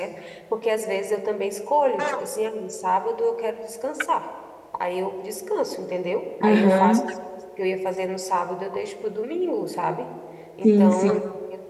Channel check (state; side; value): identical; both; correlation 1.00